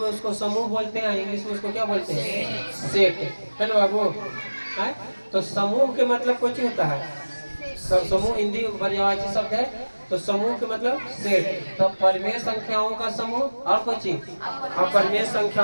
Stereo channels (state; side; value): inverted; both; correlation -1.00